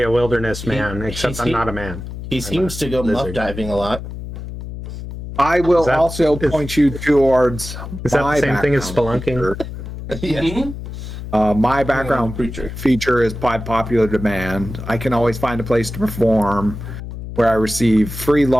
a wilderness man, except I'm not a man. He seems to go muff lizard. diving a lot. I will Is that- also is- point you towards. Is that my the same thing as background spelunking? Yes. Mhm. My background Creature. feature is by popular demand. I can always find a place to perform where I receive free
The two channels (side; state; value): left; noise; hum, 9 dB below the sound